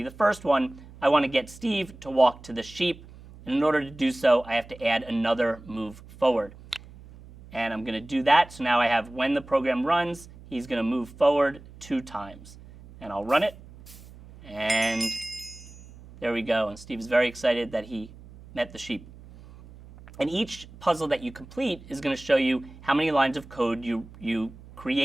the first one, I want to get Steve to walk to the sheep. And in order to do so, I have to add another move forward. And I'm going to do that. So now I have when the program runs, he's going to move forward 2 times. And I'll run it. And there we go. And Steve's very excited that he met the sheep. And each puzzle that you complete is going to show you how many lines of code you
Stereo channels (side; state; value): right; noise; hum, 19 dB below the sound